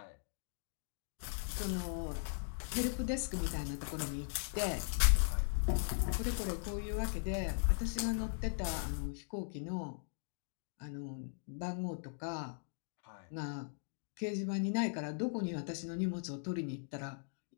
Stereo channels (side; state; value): right; silent; digital silence